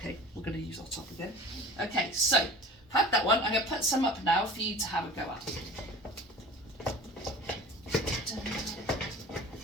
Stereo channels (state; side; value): normal; both; correlation 0.40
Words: we're going to use our top again. Okay, so had that one. I'm going to put some up now for you to have a go at.